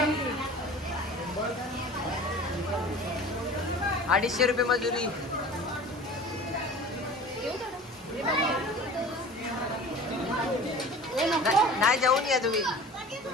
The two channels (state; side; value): normal; both; correlation 0.40